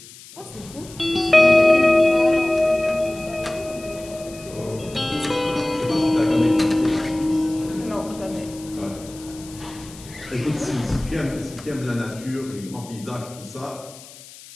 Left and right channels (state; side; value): noise; left; hiss, 19 dB below the sound